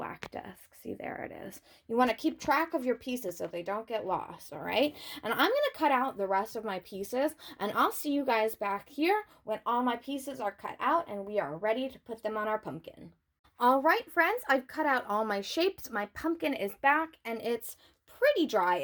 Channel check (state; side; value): identical; both; correlation 1.00